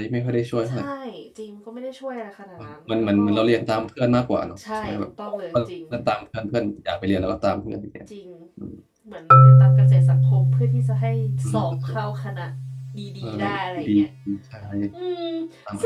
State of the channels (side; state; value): both; identical; correlation 1.00